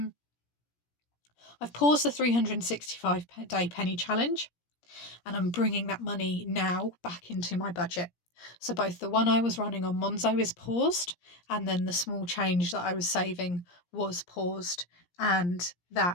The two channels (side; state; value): right; late; 17 ms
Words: I've paused the 365-day penny challenge, and I'm bringing that money now back into my budget. So both the one I was running on Monzo is paused, and then the small change that I was saving was paused, and